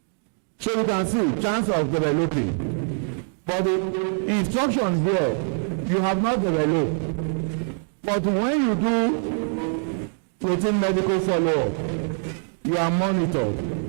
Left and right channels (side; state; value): left; silent; 56 dB below the other